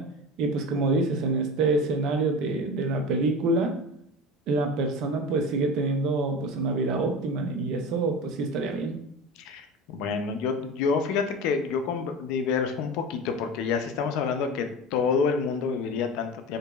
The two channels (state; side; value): normal; both; correlation 0.29